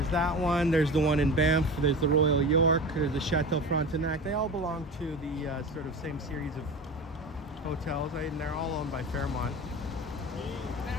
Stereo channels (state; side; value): normal; both; correlation 0.31